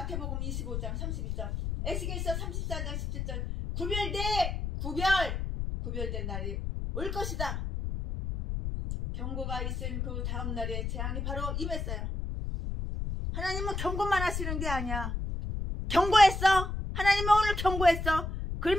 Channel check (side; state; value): left; noise; rumble, 3 dB below the sound